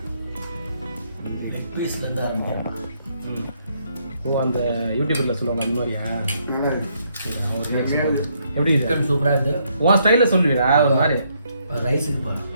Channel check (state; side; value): inverted; both; correlation -0.73